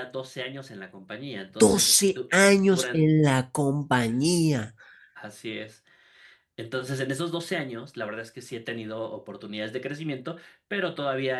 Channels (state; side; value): identical; both; correlation 1.00